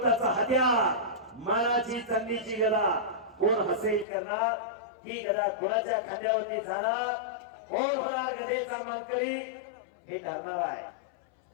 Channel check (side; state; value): right; drops out; at 4.0 s